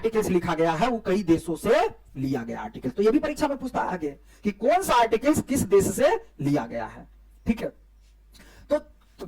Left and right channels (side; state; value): both; identical; correlation 1.00